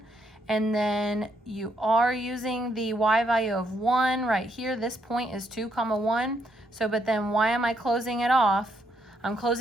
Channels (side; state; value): both; normal; correlation 0.75